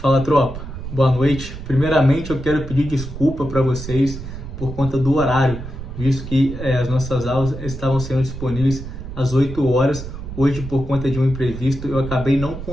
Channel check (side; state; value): right; noise; rumble, 10 dB below the sound